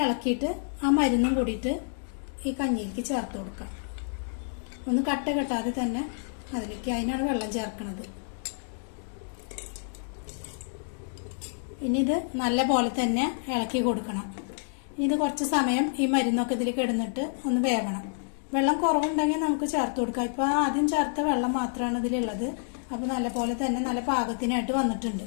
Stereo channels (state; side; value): silent; right; digital silence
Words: ഇളക്കിയിട്ട് ആ മരുന്നും കൂടിയിട്ട് ഈ കഞ്ഞിയിലേക്ക് ചേർത്ത് കൊടുക്കാം. ഒന്ന് കട്ട കെട്ടാതെ തന്നെ അതിലേക്ക്, അതിനാണ് വെള്ളം ചേർക്കുന്നത്. ഇനി ഇത് നല്ല പോലെ തന്നെ ഇളക്കി കൊടുക്കണം. ഇനി ഇത് കുറച്ച് സമയം ഈ മരുന്നൊക്കെ ഇതിലേക്ക് ഇടുന്നിട്ട് ഒന്ന് വേവണം. വെള്ളം കുറവുണ്ടെങ്കിൽ നമുക്ക് ചേർത്ത് കൊടുക്കാം. ഇപ്പൊ ആദ്യം ചേർത്ത വെള്ളം മാത്രമാണ് ഇതിലുള്ളത്. അപ്പൊ നല്ല പോലെ തന്നെ നല്ല പാകത്തിനായിട്ട് വന്നിട്ടുണ്ട്.